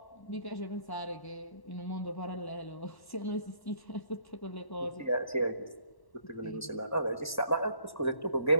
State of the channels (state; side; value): late; right; 1.1 ms